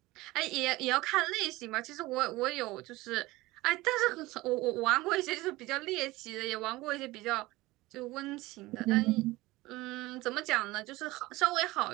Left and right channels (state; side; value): quieter; left; 19.7 dB